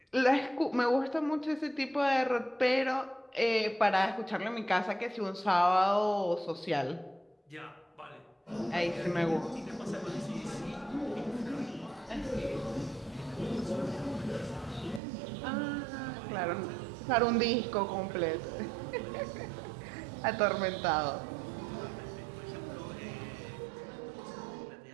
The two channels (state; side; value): drops out; left; at 15.0 s